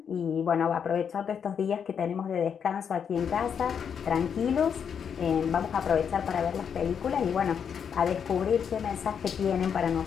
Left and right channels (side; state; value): right; quieter; 7.4 dB